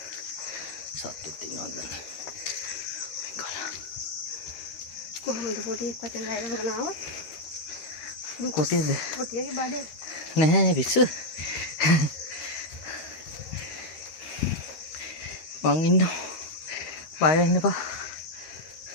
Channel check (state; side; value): late; right; 13 ms